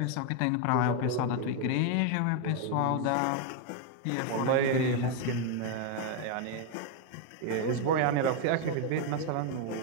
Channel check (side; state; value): both; different; correlation 0.01